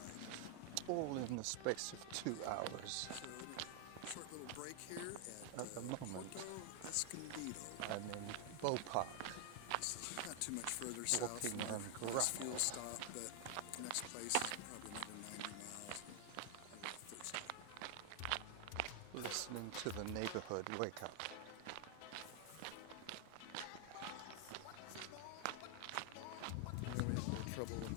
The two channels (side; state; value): both; different; correlation 0.00